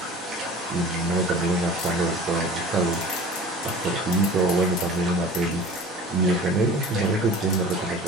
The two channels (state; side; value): normal; both; correlation 0.41